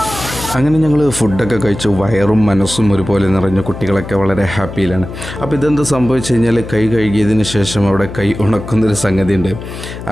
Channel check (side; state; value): left; noise; hum, 10 dB below the sound